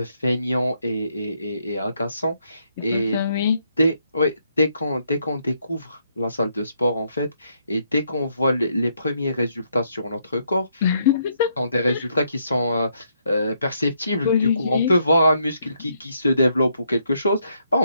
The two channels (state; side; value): inverted; both; correlation -0.74